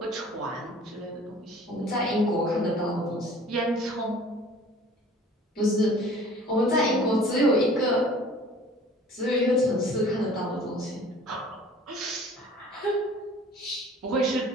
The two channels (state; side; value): normal; both; correlation 0.48